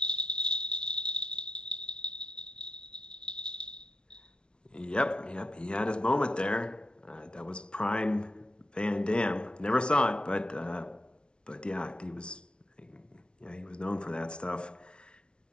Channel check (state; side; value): late; right; 0.056 ms